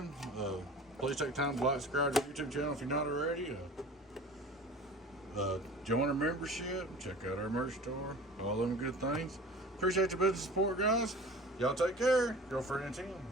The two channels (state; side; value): normal; both; correlation 0.41